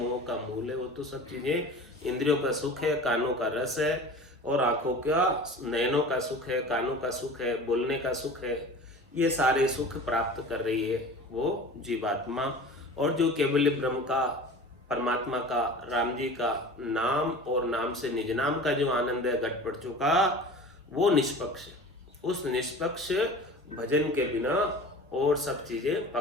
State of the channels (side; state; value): both; normal; correlation 0.39